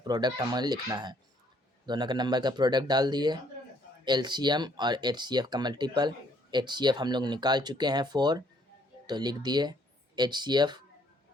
हमें लिखना है। दोनों के नंबर का प्रोडक्ट डाल दिए, LCM और HCF का मल्टीपल। HCF हम लोग निकाल चुके हैं 4, तो लिख दिए HCF।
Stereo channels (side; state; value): both; normal; correlation 0.65